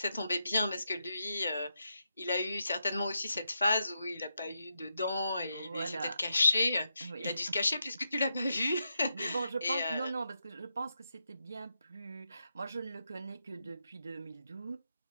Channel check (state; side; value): inverted; both; correlation -0.84